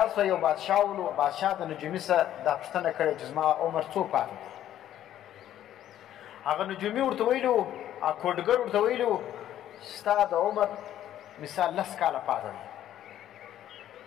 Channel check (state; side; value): quieter; right; 11.7 dB